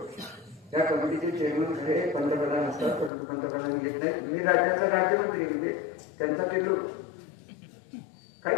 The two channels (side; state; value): right; drops out; at 3.1 s